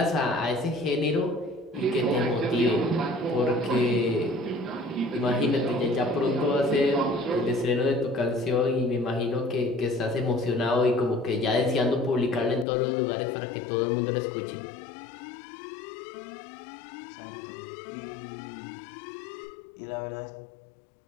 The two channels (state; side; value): drops out; right; at 12.7 s